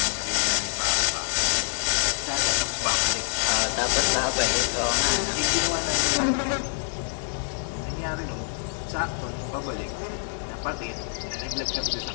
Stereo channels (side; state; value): right; silent; 61 dB below the other